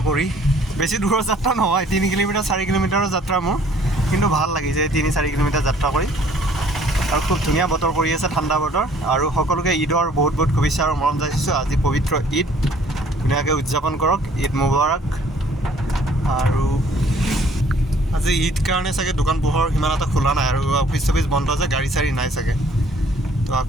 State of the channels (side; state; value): both; normal; correlation 0.58